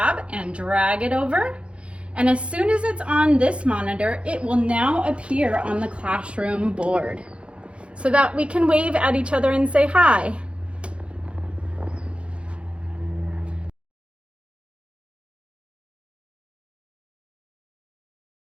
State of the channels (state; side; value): late; left; 0.059 ms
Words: and drag it over. And as soon as it's on this monitor, it will now appear on the classroom board so that we can wave at each other and say hi.